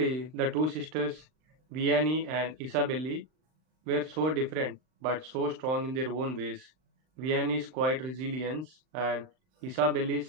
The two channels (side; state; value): left; late; 39 ms